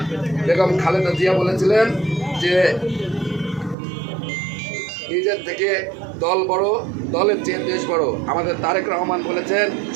বেগম খালেদা জিয়া বলেছিলেন যে নিজের থেকে দল বড়, দলের চেয়ে দেশ বড়। আমাদের তারেক রহমান বলেছেন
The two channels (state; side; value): drops out; left; at 3.8 s